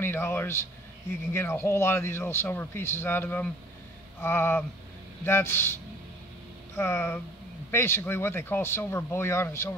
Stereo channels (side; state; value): both; normal; correlation 0.53